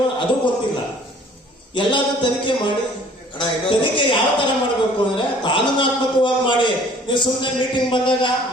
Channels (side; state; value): both; normal; correlation 0.54